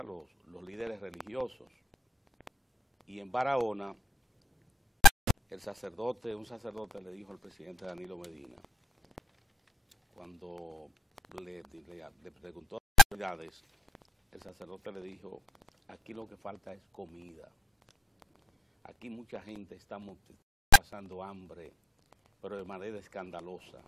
los líderes religiosos. Y en Barahona, un sacerdote le dijo al presidente Danilo Medina, cuando le preguntó las autoridades, el sacerdote le dijo: aquí lo que falta es comida. Aquí mucha gente está pasando hambre, pero de manera escandalosa.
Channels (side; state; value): both; normal; correlation 0.76